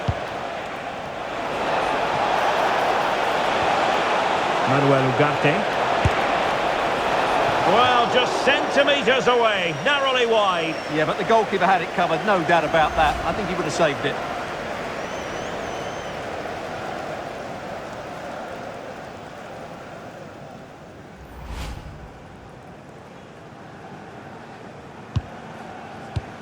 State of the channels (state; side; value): identical; both; correlation 1.00